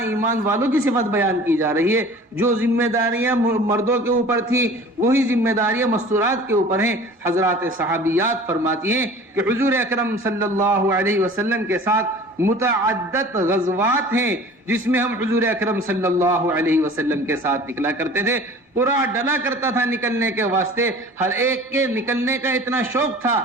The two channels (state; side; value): normal; both; correlation 0.44